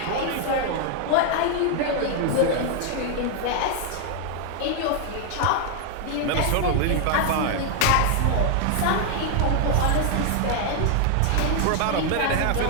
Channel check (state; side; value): different; both; correlation 0.00